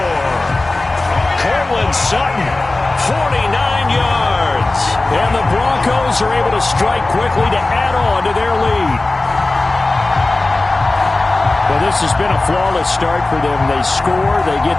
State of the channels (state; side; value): quieter; right; 3.1 dB